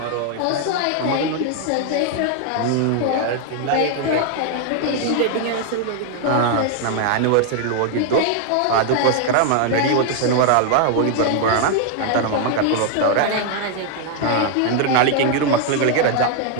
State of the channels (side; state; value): both; different; correlation 0.00